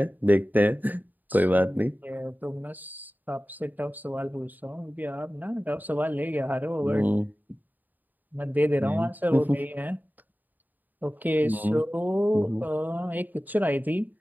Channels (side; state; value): left; late; 0.086 ms